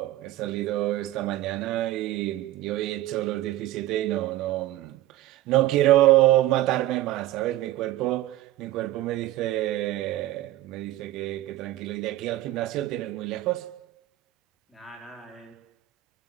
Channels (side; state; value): left; quieter; 15.5 dB